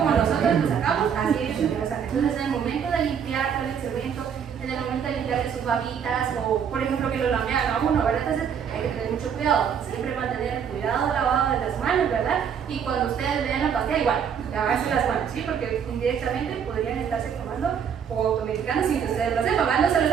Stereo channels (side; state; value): left; quieter; 7.6 dB